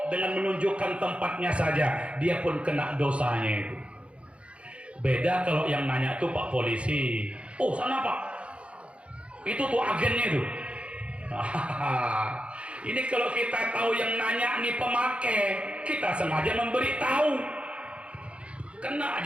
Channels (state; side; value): late; left; 0.060 ms